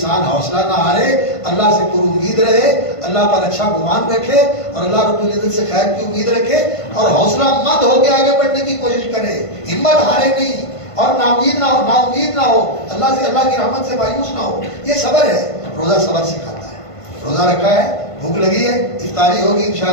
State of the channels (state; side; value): late; right; 1.5 ms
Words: حوصلہ نہ ہارے، اللہ سے پر امید رہے، اللہ پر اچھا گمان رکھے اور اللہ رب العزت سے خیر کی امید رکھے اور حوصلہ مند ہو کے آگے بڑھنے کی کوشش کرے، ہمت ہارے نہیں اور نا امید نہ ہو، نا امید نہ ہو، اللہ سے، اللہ کی رحمت سے مایوس نہ ہو. یہ صبر ہے. روزہ صبر سکھاتا ہے. روزہ رکھا ہے، بھوک لگی ہے، افطاری ہوگی